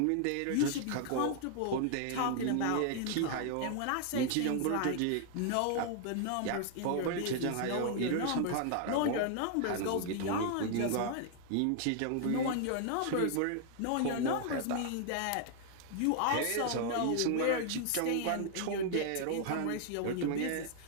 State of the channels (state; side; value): different; both; correlation 0.00